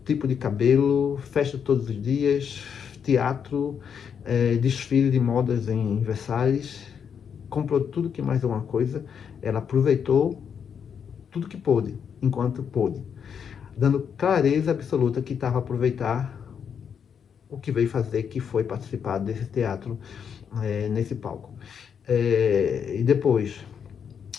tipo de cabelo, festa todos os dias, teatro, desfile de modas em Versalhes, comprou tudo que mais alguma coisa, ela aproveitou tudo que pôde, enquanto pôde, dando clareza absoluta que estava a aproveitar o que veio fazer, que foi participar desse teatro, nesse palco. E depois,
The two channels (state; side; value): quieter; right; 7.4 dB